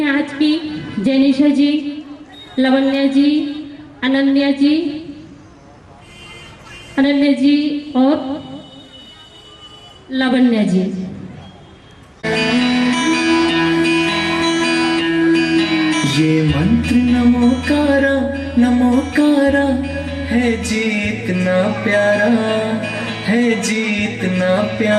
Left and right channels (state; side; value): identical; both; correlation 1.00